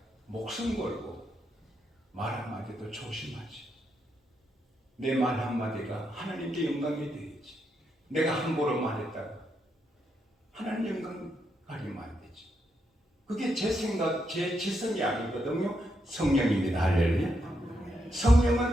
목숨 걸고 말 한마디도 조심하지. 내 말 한마디가 하나님께 영광이 되겠지. 내가 함부로 말했다가 하나님 영광 가리면 안 되지. 그게 제 생각, 제 지성이 아니거든요. 성령입니다. 할렐루야.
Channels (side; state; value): both; normal; correlation 0.81